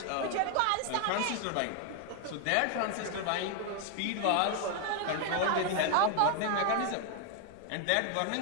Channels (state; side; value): different; both; correlation 0.01